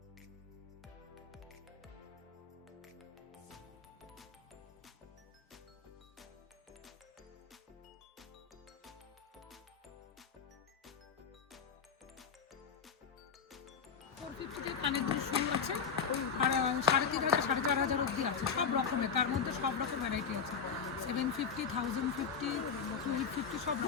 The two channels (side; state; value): right; quieter; 6.2 dB